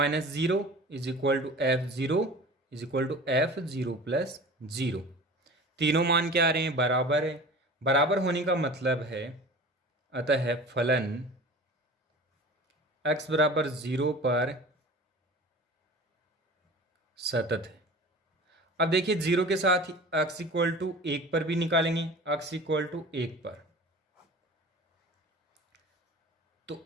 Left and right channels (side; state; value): both; normal; correlation 0.39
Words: 0 is equal to f 0 is equal to f 0 plus 0। तीनों मान क्या आ रहे हैं? बराबर है। बराबर होने का मतलब है अतः फलन x बराबर 0 पर सतत है। अब देखिए 0 के साथ ही x इक्वल टू 1 पर भी निकालेंगे, x इक्वल टू 1 पर, तो